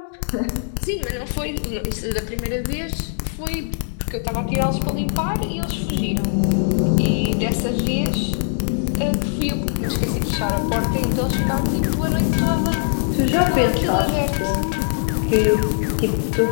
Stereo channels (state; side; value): silent; right; digital silence